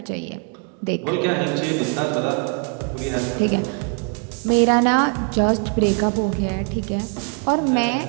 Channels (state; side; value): quieter; left; 39.6 dB